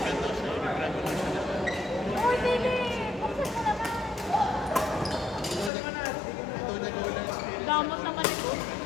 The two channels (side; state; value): right; drops out; at 5.7 s